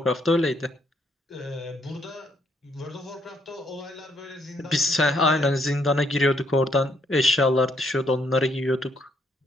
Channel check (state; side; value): normal; both; correlation 0.71